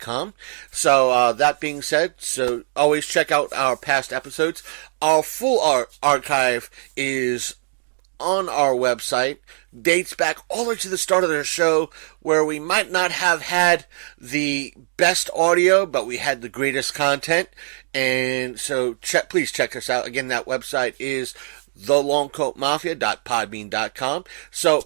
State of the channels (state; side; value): silent; left; digital silence